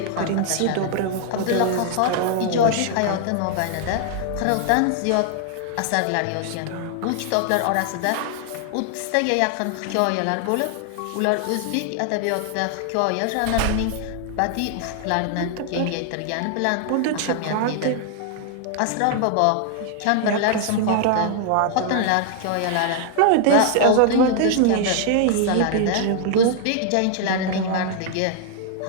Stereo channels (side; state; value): both; different; correlation 0.00